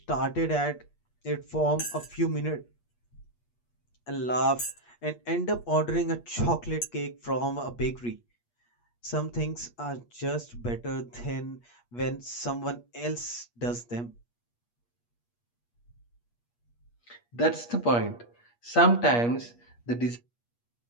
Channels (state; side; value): late; right; 8.4 ms